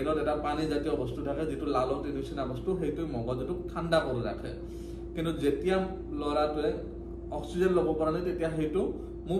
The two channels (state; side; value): identical; both; correlation 1.00